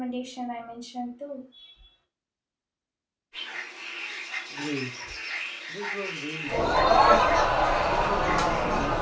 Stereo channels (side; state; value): both; identical; correlation 1.00